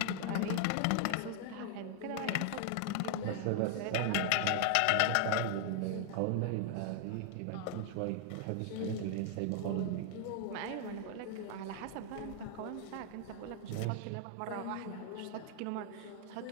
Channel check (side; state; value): both; different; correlation 0.00